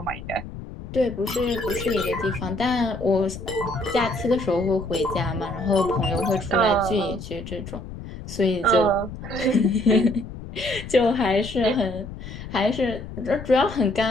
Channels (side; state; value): left; noise; rumble, 11 dB below the sound